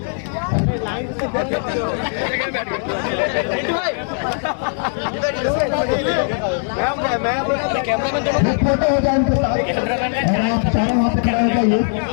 फोटो हो जाए इनके साथ और आप चारों वहाँ पे खड़ा हो जाइए।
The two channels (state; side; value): silent; right; digital silence